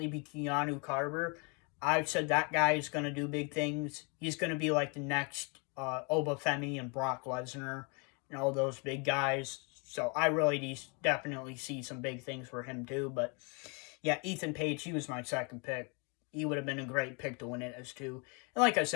be Keanu Carter. I've said that guy is going to do big things. He's going to be like the next Oba Femi and Brock Lesnar and all those big guys. So I really definitely see some big things for him too. But yeah, Ethan Page, he was my second pick. He would have been a great pick to win it as too. And like I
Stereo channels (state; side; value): quieter; right; 33.6 dB